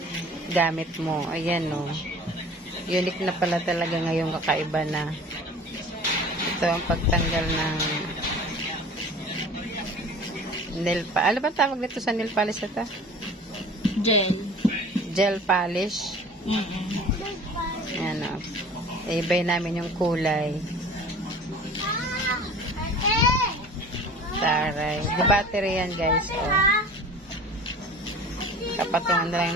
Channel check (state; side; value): normal; both; correlation 0.43